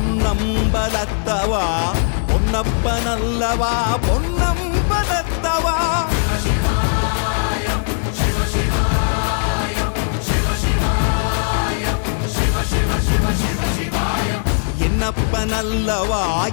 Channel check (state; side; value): silent; right; digital silence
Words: பொன்னப்பனல்லவா பொன்னம்பலத்தவா. என்னப்பனல்லவா